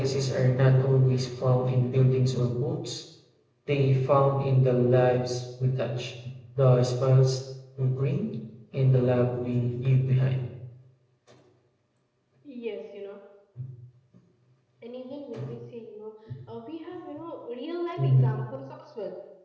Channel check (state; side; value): identical; both; correlation 1.00